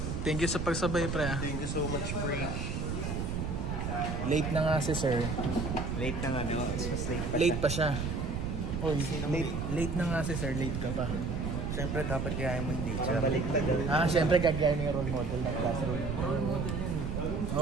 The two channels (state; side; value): noise; right; rumble, 2 dB below the sound